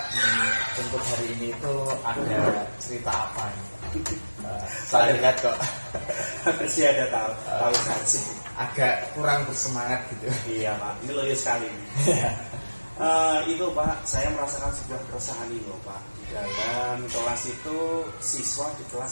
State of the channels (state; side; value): inverted; both; correlation -1.00